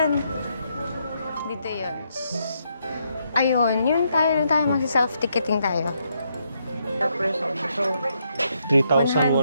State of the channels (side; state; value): both; inverted; correlation -0.77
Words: Dito yun. Ayun, yun tayo magsi-self-ticketing tayo. Per person. So, 3,000